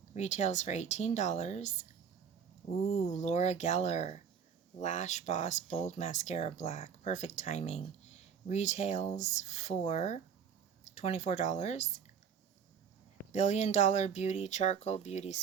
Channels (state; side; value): quieter; left; 7.2 dB